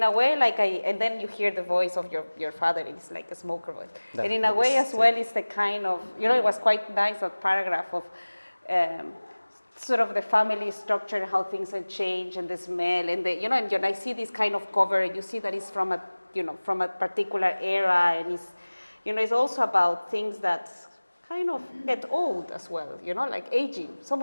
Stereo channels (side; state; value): both; inverted; correlation -1.00